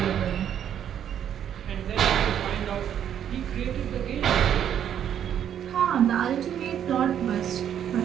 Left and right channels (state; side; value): quieter; left; 9.6 dB